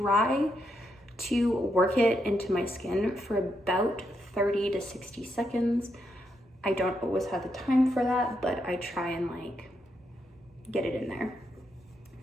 to work it into my skin for about 30 to 60 seconds. I don't always have the time for that, but I try and like get it in there.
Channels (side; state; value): both; normal; correlation 0.81